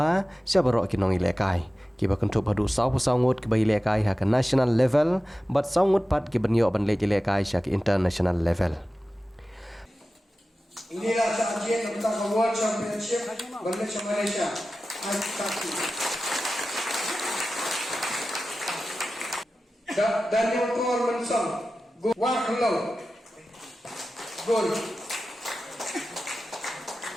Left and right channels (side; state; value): both; normal; correlation 0.94